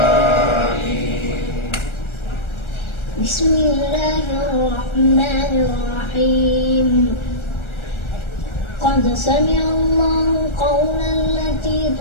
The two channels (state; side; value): late; right; 1.3 ms